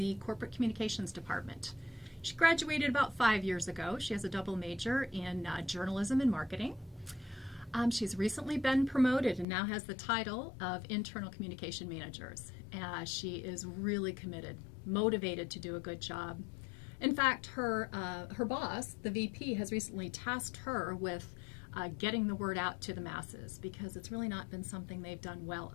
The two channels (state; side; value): drops out; right; at 9.5 s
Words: corporate communications department. She graduated about 5 years ago. She has a double major in journalism and marketing. She's recently been promoted and now has the title of Internal Communication Managers. She is really committed, motivated to do a good job. In fact, her boss, the VP, has recently tasked her with getting the word out to the masses because it's really not been something they've done well